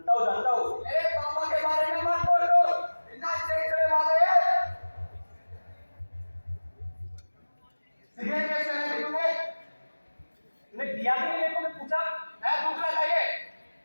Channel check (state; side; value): inverted; both; correlation -1.00